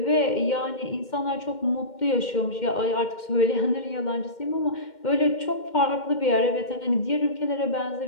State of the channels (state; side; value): late; right; 2.1 ms